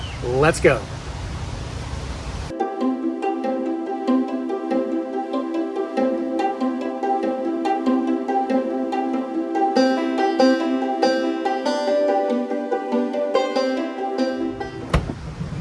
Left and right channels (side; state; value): both; identical; correlation 1.00